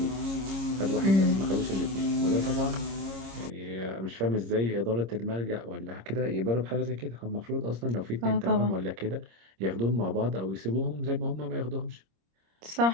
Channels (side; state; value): left; late; 26 ms